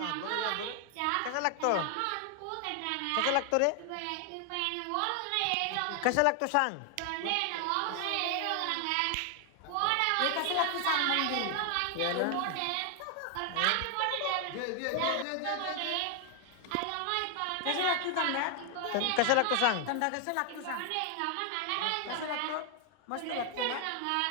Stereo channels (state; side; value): different; both; correlation 0.00